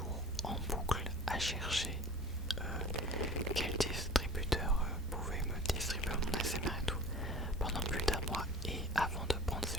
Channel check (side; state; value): both; normal; correlation 0.43